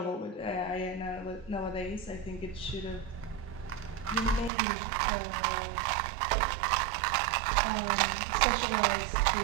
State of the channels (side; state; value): left; drops out; at 4.5 s